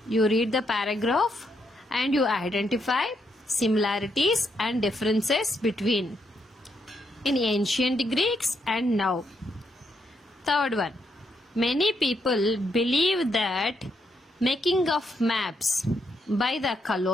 you read the paragraph and you identify similarities and differences between in ancient Greeks and now. Third one. Many people believe that making of maps by the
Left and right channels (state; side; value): normal; both; correlation 0.78